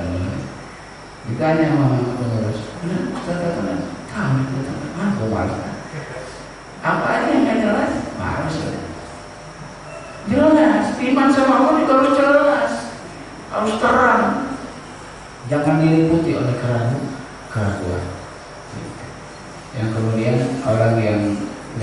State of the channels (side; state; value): both; identical; correlation 1.00